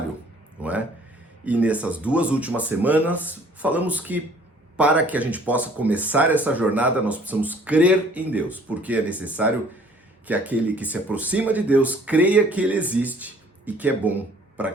não é? E nessas duas últimas semanas, falamos que para que a gente possa começar essa jornada, nós precisamos crer em Deus, porque é necessário que aquele que se aproxima de Deus creia que Ele existe e que é bom para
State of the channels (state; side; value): normal; both; correlation 0.55